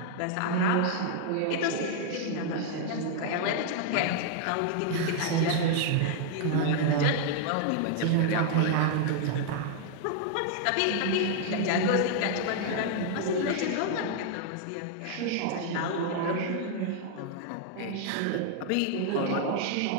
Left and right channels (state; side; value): different; both; correlation 0.00